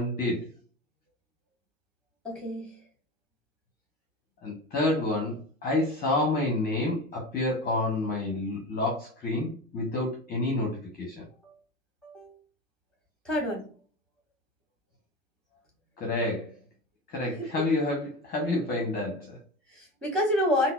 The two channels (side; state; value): both; normal; correlation 0.26